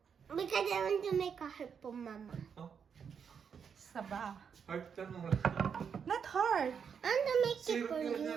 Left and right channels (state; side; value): quieter; left; 6.9 dB